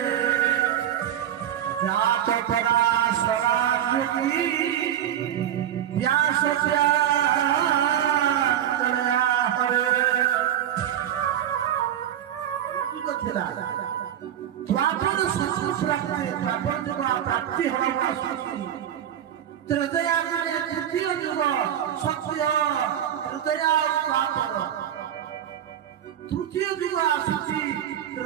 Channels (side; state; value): left; quieter; 10.5 dB